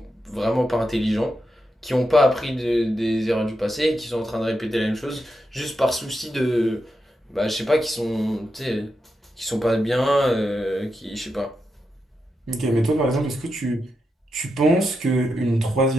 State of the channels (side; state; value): both; normal; correlation 0.86